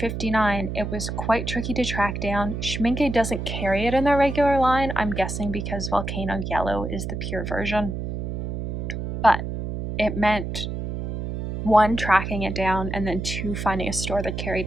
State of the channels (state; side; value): noise; right; hum, 4 dB below the sound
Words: it was quite tricky to track down. Schmincke doesn't carry it in their regular line, I'm guessing because Volcano Yellow is the pure version. But it meant 1, tracking it down, and then 2, finding a store that